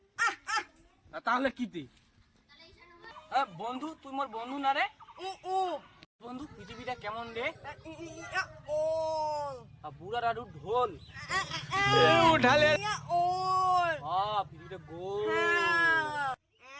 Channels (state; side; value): identical; both; correlation 1.00